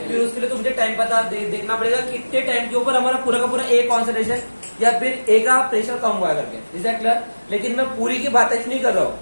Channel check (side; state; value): both; inverted; correlation -1.00